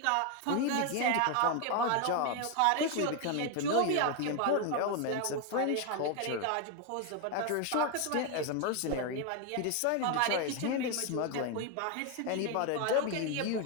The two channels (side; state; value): both; different; correlation 0.01